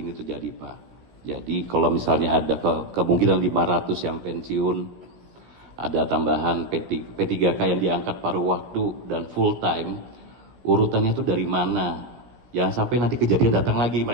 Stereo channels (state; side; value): late; left; 16 ms